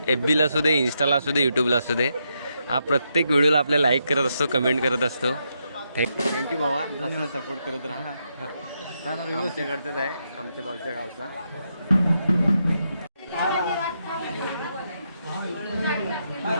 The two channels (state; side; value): inverted; both; correlation -0.81